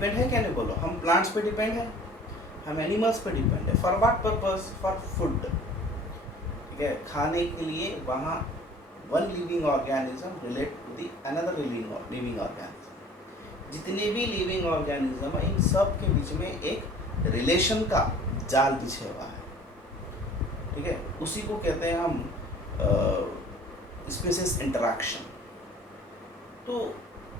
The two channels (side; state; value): both; normal; correlation 0.48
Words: है क्या? नहीं बोलो, हम प्लांट्स पे डिपेंड है, हम एनिमल्स पे डिपेंड है। For what purpose? For food, ठीक है, खाने के लिए। वहाँ one living organism relate to the another living organism. जितने भी लिविंग ऑर्गेनिज्म है, इन सब के बीच में एक रिलेशन का जाल बिछा हुआ है, ठीक है, उसी को कहते हैं हम स्पीशीज इंटरैक्शन। तो